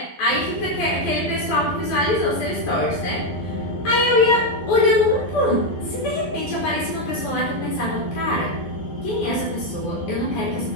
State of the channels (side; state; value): right; late; 12 ms